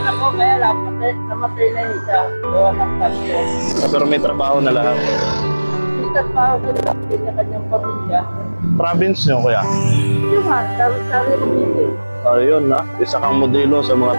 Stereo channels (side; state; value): both; inverted; correlation -1.00